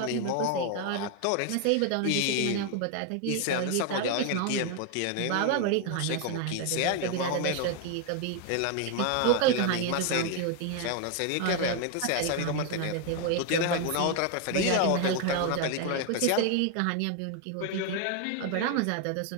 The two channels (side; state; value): both; different; correlation 0.01